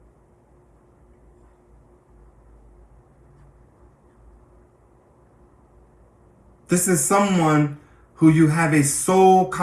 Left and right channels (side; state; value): both; identical; correlation 1.00